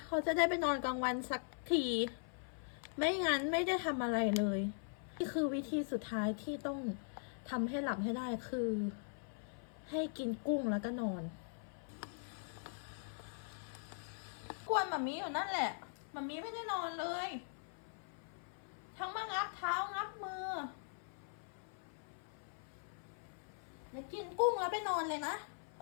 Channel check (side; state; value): right; silent; 50 dB below the other